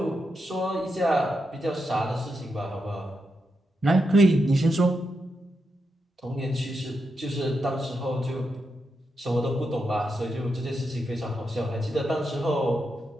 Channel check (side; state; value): both; normal; correlation 0.85